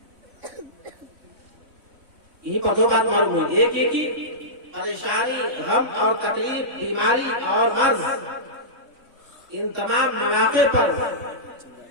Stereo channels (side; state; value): left; late; 3.6 ms